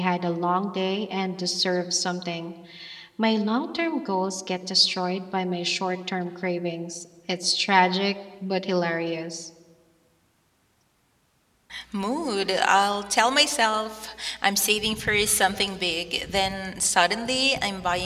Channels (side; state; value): both; identical; correlation 1.00